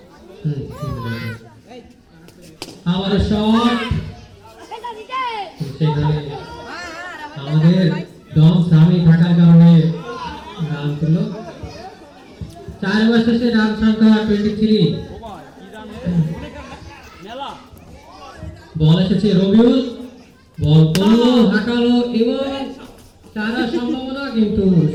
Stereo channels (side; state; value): both; identical; correlation 1.00